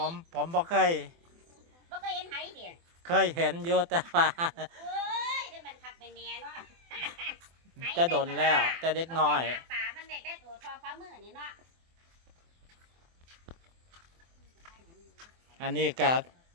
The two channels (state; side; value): late; left; 24 ms